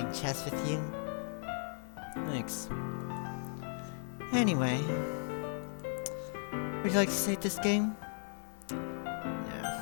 chess with you. Thanks. Anyway, would you like to save this game? No.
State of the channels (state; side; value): silent; right; digital silence